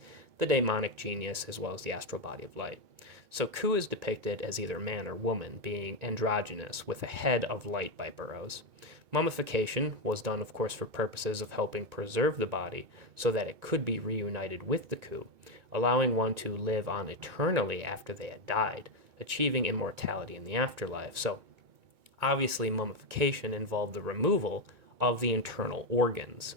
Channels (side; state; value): left; late; 2.2 ms